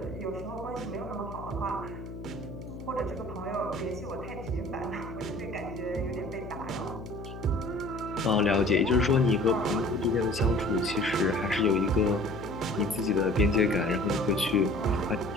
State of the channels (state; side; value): noise; left; hum, 11 dB below the sound